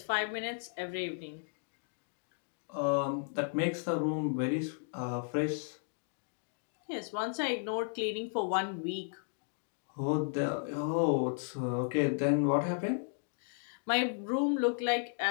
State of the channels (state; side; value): silent; right; digital silence